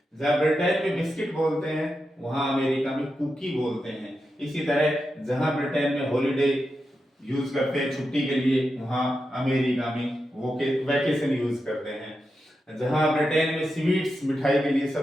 जहां ब्रिटेन में बिस्किट बोलते हैं, वहां अमेरिका में कुकी बोलते हैं। इसी तरह जहां ब्रिटेन में हॉलीडे यूज करते हैं छुट्टी के लिए, वहां अमेरिका में वैकेशन यूज करते हैं। जहां ब्रिटेन में स्वीट्स मिठाई के लिए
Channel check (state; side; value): normal; both; correlation 0.88